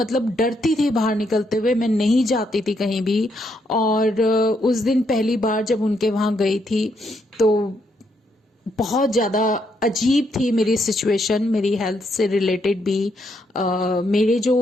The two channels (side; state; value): both; normal; correlation 0.76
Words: मतलब डरती थी बाहर निकलते हुए, मैं नहीं जाती थी कहीं भी। और उस दिन पहली बार जब उनके वहां गई थी तो बहुत ज़्यादा अजीब थी मेरी सिचुएशन, मेरी हेल्थ से रिलेटेड भी। मेरे